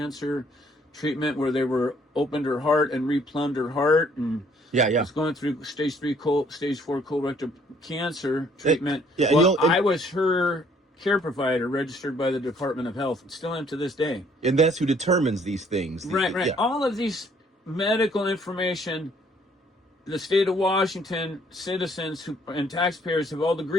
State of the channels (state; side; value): normal; both; correlation 0.63